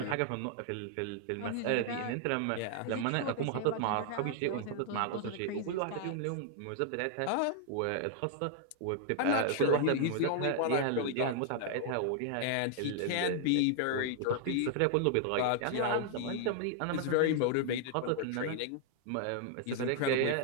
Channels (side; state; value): both; different; correlation 0.00